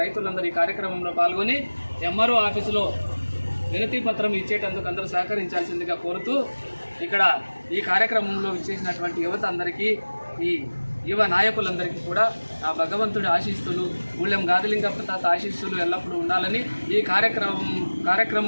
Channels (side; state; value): both; inverted; correlation -1.00